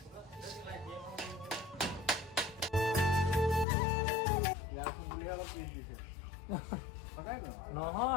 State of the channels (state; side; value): drops out; right; at 3.7 s